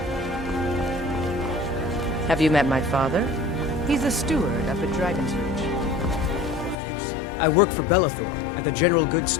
Have you met my father? He's a steward up at Dragon's Reach. I work for Bellathor at the general goods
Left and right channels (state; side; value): drops out; right; at 6.8 s